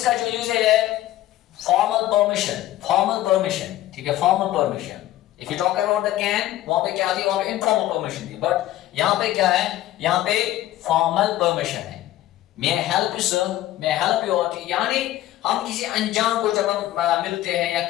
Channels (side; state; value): right; quieter; 14.4 dB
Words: जो यूज है फॉर्मल परमिशन, ठीक है, formal permission. If you talk about the can, वहां पे क्या थी, वहां पे इनफॉर्मल परमिशन थी, बट यहां पे क्या है, यहां पे फॉर्मल परमिशन है। May help you sir, may help you out, यानी हम किसी अनजान को जब हम मिलते हैं या